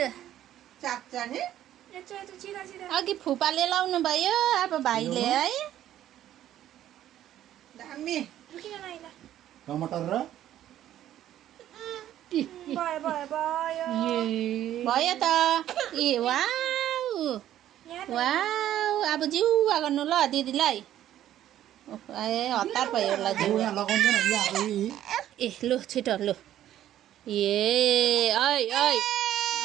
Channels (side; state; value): left; quieter; 12.1 dB